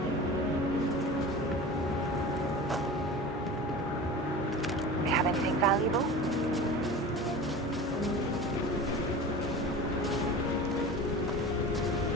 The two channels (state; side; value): normal; both; correlation 0.34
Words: We have anything valuable?